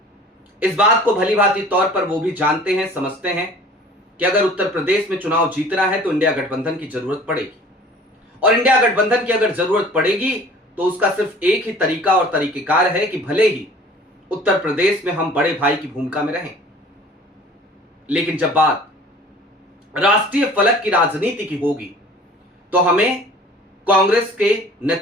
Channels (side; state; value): both; normal; correlation 0.47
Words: इस बात को भली भांति तौर पर वो भी जानते हैं, समझते हैं कि अगर उत्तर प्रदेश में चुनाव जीतना है तो इंडिया गठबंधन की जरूरत पड़ेगी, और इंडिया गठबंधन की अगर जरूरत पड़ेगी तो उसका सिर्फ एक ही तरीका और तरीकेकार है कि भले ही उत्तर प्रदेश में हम बड़े भाई की भूमिका में रहें, लेकिन जब बात राष्ट्रीय फलक की राजनीति की होगी तो हमें कांग्रेस के